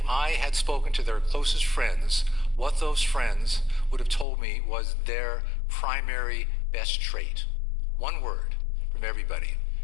I had spoken to their closest friends, what those friends would have told me was their primary best trait. One word from everybody.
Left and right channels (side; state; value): right; drops out; at 4.2 s